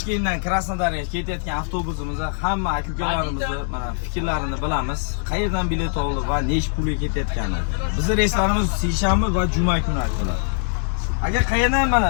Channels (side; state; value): right; silent; digital silence